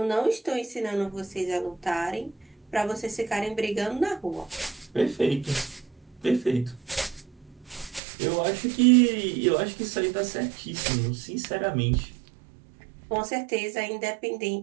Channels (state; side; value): drops out; left; at 8.0 s